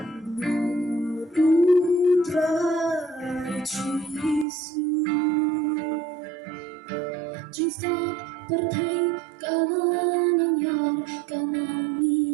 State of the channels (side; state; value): left; drops out; at 4.5 s